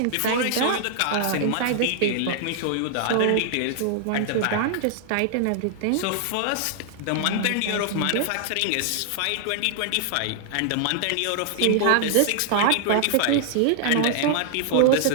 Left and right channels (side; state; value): both; different; correlation -0.01